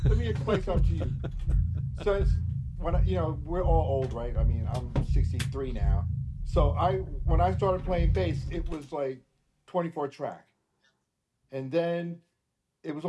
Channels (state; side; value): identical; both; correlation 1.00